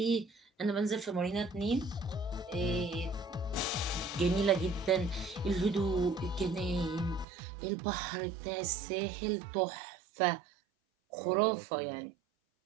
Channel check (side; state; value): left; drops out; at 7.2 s